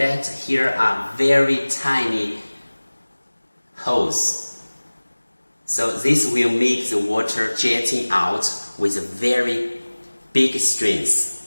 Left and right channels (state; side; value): inverted; both; correlation -1.00